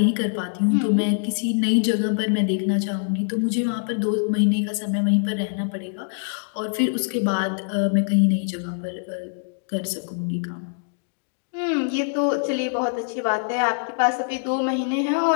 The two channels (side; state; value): right; silent; digital silence